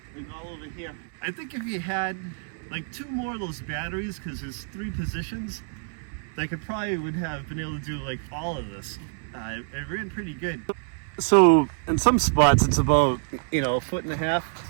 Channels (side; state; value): left; silent; 60 dB below the other